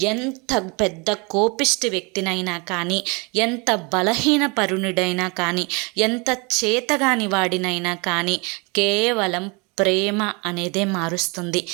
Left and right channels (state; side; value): quieter; left; 29.6 dB